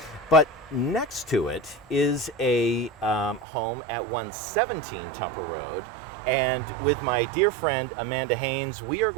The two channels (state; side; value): drops out; left; at 3.5 s